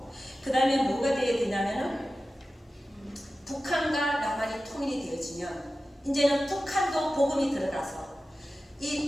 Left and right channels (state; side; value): normal; both; correlation 0.94